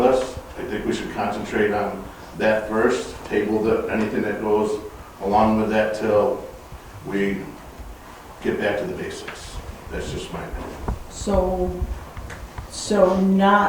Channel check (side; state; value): both; identical; correlation 1.00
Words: us. I think we should concentrate on that first, table anything that goes along with that till we get back to the basics. That's just my opinion. So